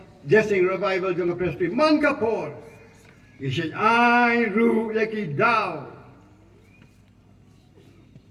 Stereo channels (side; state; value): both; identical; correlation 1.00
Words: jasa revival jangka Presbyterian man kapor. Isyan ay ru lagi daw.